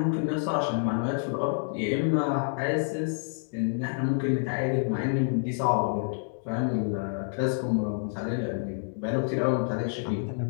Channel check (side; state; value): right; silent; digital silence